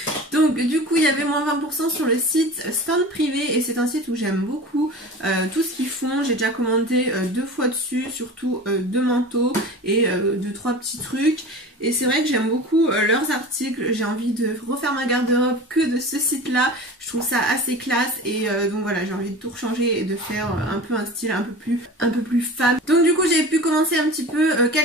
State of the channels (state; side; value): normal; both; correlation 0.35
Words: Donc du coup il y avait moins 20% sur le site Stand Privé et c'est un site où j'aime beaucoup tout ce qu'ils font. J'ai déjà commandé 2 fois dessus, surtout 2 manteaux et 2-3 petits trucs. Et c'est vrai que j'aime beaucoup leurs articles, j'ai envie de refaire ma garde-robe que de ce site-là. Je trouve ça assez classe et donc voilà, j'ai envie de tout rechanger et de faire un peu un style un peu plus femme. Donc du coup j'ai pu commencer un petit peu